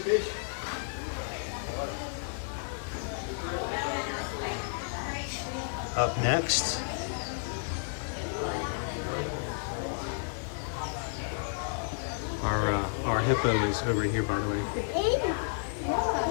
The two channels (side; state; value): right; silent; digital silence